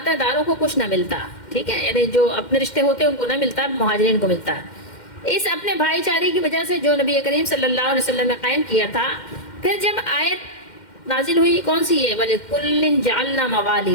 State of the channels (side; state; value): right; late; 2.1 ms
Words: داروں کو کچھ نہ ملتا، ٹھیک ہے، یعنی جو اپنے رشتے ہوتے ان کو نہ ملتا، مہاجرین کو ملتا۔ اس اپنے بھائی چارے کی وجہ سے جو نبی کریم صلی اللہ علیہ وسلم نے قائم کیا تھا، پھر جب آیت نازل ہوئی کون سی ہے، وَلِكُلٍّ جَعَلْنَا